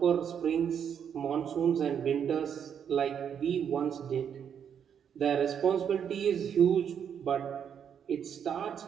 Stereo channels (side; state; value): left; quieter; 8.1 dB